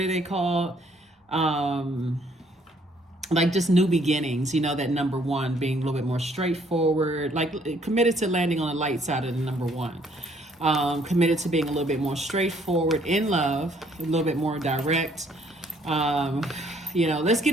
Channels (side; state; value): both; normal; correlation 0.64